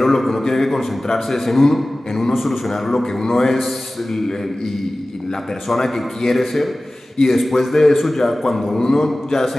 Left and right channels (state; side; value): normal; both; correlation 0.97